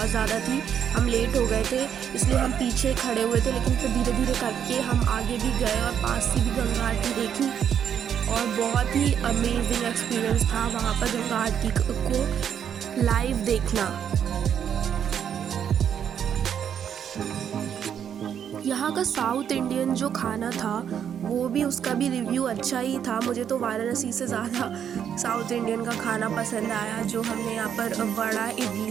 ज़्यादा थी। हम लेट हो गए थे इसलिए हम पीछे खड़े हुए थे, लेकिन फिर धीरे धीरे करके हम आगे भी गए और पास से भी गंगा आरती देखी और बहुत ही अमेजिंग एक्सपीरियंस था वहाँ पर गंगा आरती को लाइव देखना। यहाँ का साउथ इंडियन जो खाना था वो भी, उसका भी रिव्यू अच्छा ही था। मुझे तो वाराणसी से ज़्यादा साउथ इंडियन का खाना पसंद आया। जो हमने यहाँ पर वड़ा,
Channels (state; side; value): quieter; left; 8.6 dB